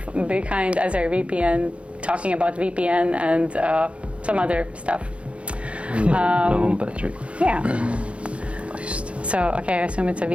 AzireVPN, talking about VPN and some other stuff. Low battery. Yeah. So I assume it's a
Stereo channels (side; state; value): left; late; 0.061 ms